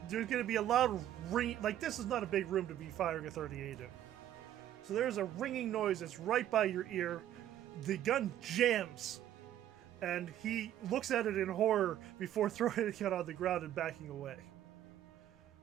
gonna be a loud ring. Like, this is not a big room to be firing a 38 in. So there's a ringing noise that's right by your ear. The gun jams, and he looks at it in horror before throwing it on the ground and backing away.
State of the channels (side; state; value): left; quieter; 11.9 dB